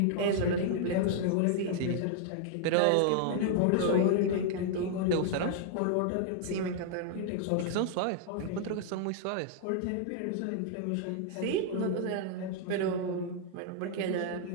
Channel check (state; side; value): different; both; correlation -0.01